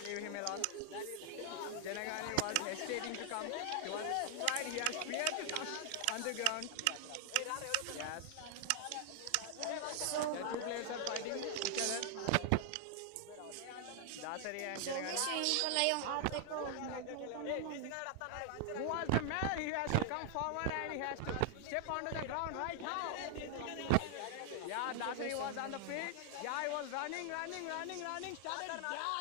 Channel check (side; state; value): both; different; correlation 0.00